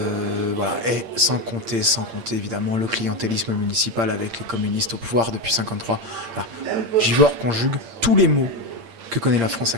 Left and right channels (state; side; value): late; left; 8.7 ms